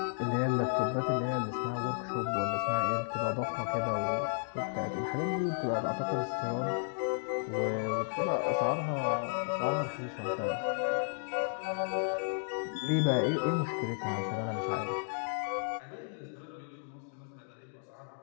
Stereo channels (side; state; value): right; silent; digital silence